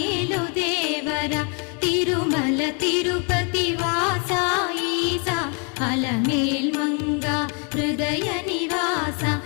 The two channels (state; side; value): quieter; right; 36.9 dB